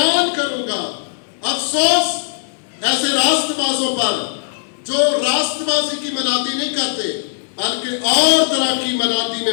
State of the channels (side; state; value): right; silent; 65 dB below the other